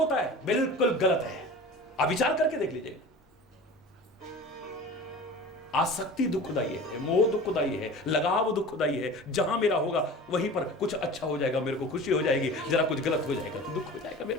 है। बिल्कुल गलत है। आप विचार करके देख लीजिए। आसक्ति दुखदाई है, मोह दुखदाई है, लगाव दुखदाई है। जहां मेरा होगा वहीं पर कुछ अच्छा हो जाएगा, मेरे को खुशी हो जाएगी, जरा कुछ गलत हो जाएगा तो दुख हो जाएगा मेरे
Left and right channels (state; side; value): normal; both; correlation 0.37